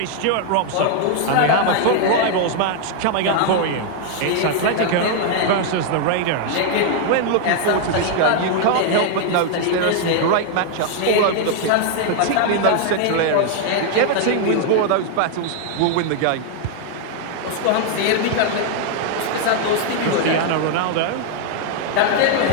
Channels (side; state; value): both; different; correlation 0.00